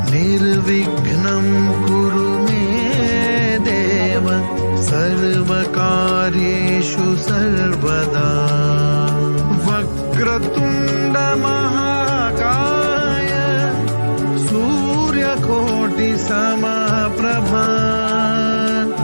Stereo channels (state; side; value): inverted; both; correlation -1.00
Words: निर्विघ्नं कुरु मे देव सर्वकार्येषु सर्वदा। वक्रतुण्ड महाकाय सूर्यकोटिसमप्रभा